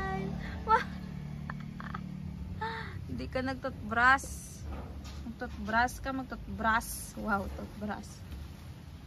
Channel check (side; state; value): both; identical; correlation 1.00